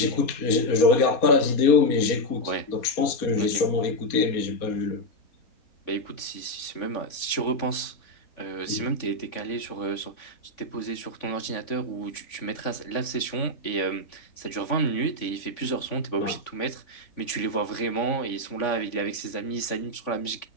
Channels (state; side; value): late; right; 3.5 ms